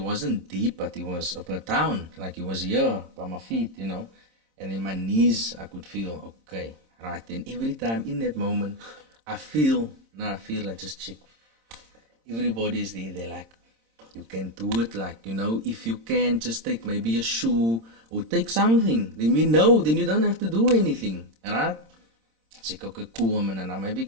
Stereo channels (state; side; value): late; left; 26 ms